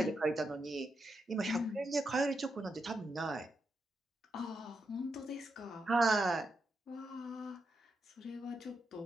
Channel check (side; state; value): both; normal; correlation 0.84